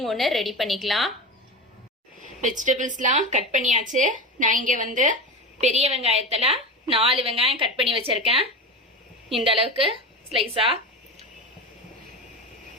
ஒன்று ரெடி பண்ணிக்கலாம். வெஜிடபிள்ஸ்லாம் கட் பண்ணியாச்சு. நான் இங்கே பெரிய வெங்காயத்தில் 4 வெங்காயம் கட் பண்ணி வச்சிருக்கேன். இந்த அளவுக்கு ஸ்லைஸா.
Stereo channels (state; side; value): normal; both; correlation 0.23